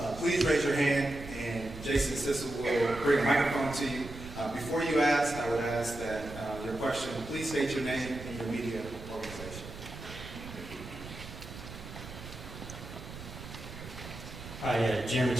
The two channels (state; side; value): noise; right; rumble, 12 dB below the sound